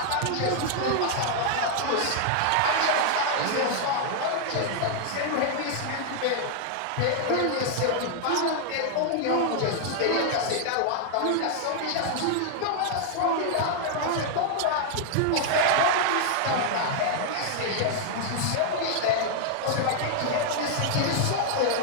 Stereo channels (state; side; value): different; both; correlation 0.00